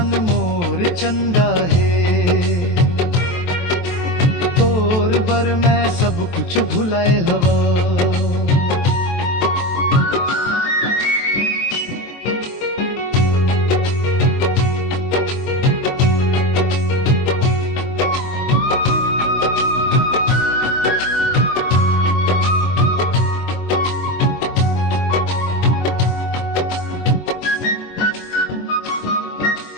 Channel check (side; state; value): right; late; 23 ms